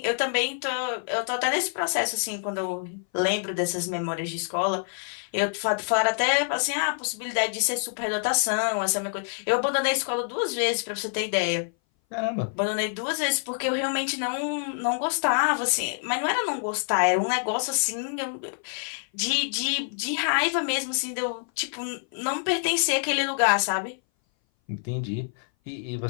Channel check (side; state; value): right; silent; 58 dB below the other